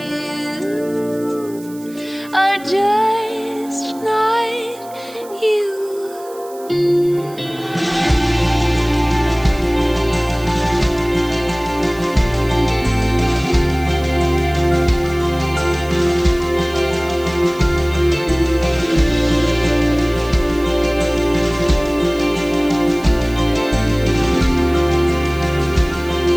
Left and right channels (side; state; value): right; noise; hiss, 22 dB below the sound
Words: are just not you.